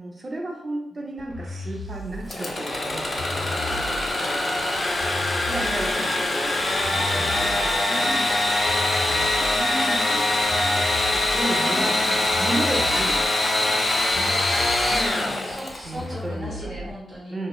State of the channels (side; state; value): both; normal; correlation 0.88